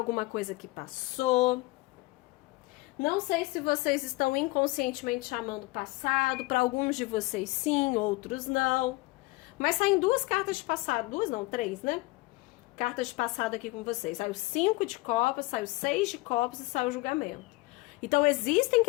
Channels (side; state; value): right; quieter; 22.4 dB